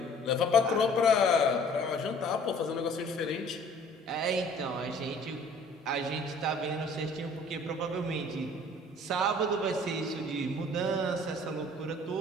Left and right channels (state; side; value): normal; both; correlation 0.53